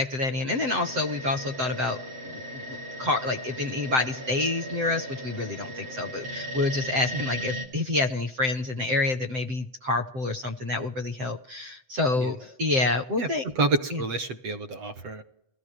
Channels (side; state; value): left; late; 8.0 ms